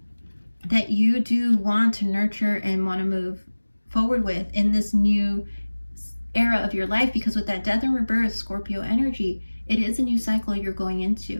that you do want to nurture and want to move forward with in this new era of your life, because with that death and rebirth Scorpio energy, it is a new cycle you're going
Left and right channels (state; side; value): inverted; both; correlation -1.00